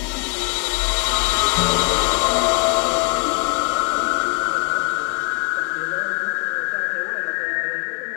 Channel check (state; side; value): quieter; right; 33.9 dB